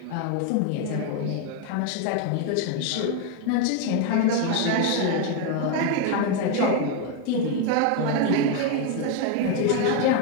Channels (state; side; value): different; both; correlation 0.01